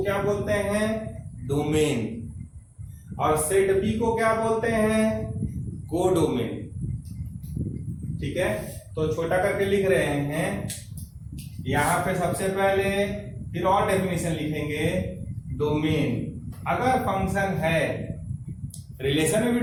क्या बोलते हैं, डोमेन। और सेट बी को क्या बोलते हैं? कोडोमेन। ठीक है, तो छोटा करके लिख रहे हैं यहां पे सबसे पहले, फिर और डेफिनेशन लिखेंगे। डोमेन अगर फंक्शन है, रिलेशन में भी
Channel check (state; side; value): identical; both; correlation 1.00